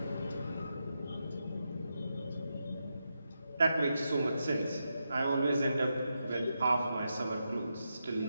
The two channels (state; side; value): inverted; both; correlation -0.86